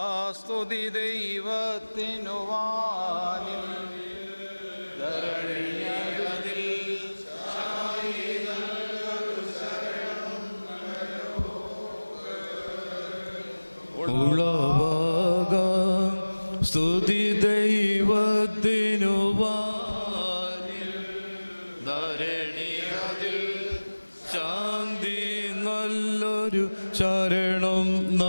ദൈവത്തിനു വാനിൽ ധരണിയതിൽ ഉളവാകാം സ്തുതി ദൈവത്തിനു വാനിൽ ധരണിയതിൽ ശാന്തി നല്ലൊരു ശരണം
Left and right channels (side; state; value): both; inverted; correlation -1.00